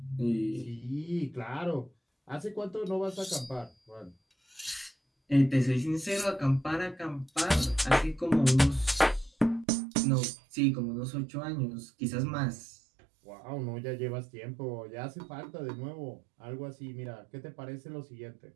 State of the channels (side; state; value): left; drops out; at 9.7 s